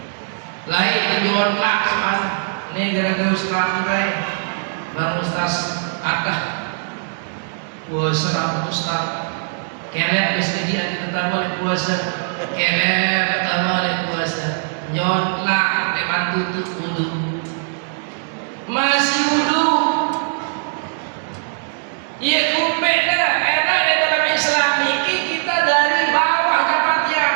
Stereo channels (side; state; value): left; silent; 66 dB below the other